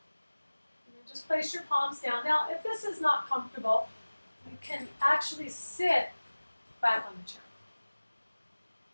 And just place your palms down. Now, if this is not comfortable, you can actually sit back on the chair.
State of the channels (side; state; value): both; inverted; correlation -1.00